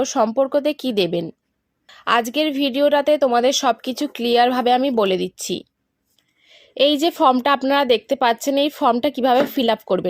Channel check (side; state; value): both; identical; correlation 1.00